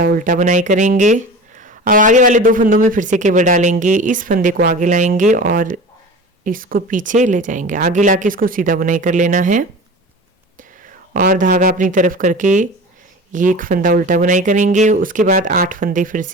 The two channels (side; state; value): both; normal; correlation 0.35